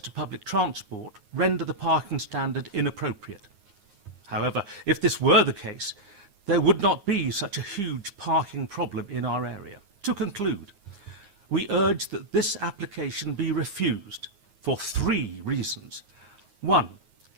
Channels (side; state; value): left; late; 9.7 ms